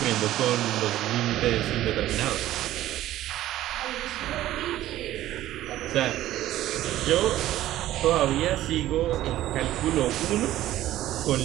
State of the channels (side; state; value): left; quieter; 14.2 dB